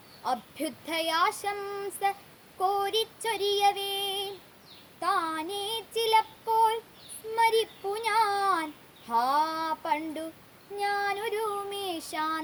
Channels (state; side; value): identical; both; correlation 1.00